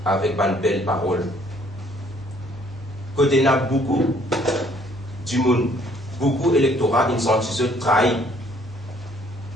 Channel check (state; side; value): normal; both; correlation 0.62